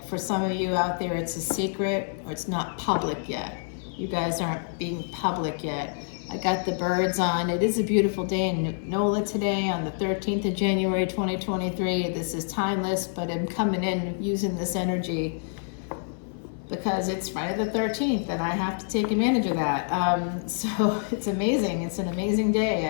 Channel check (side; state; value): right; silent; 57 dB below the other